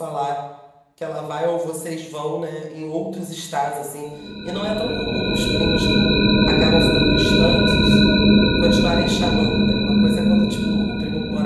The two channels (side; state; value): both; identical; correlation 1.00